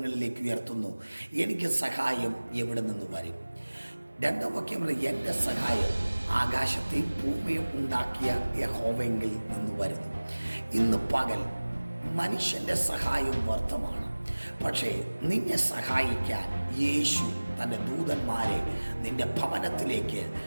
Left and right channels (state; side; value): inverted; both; correlation -1.00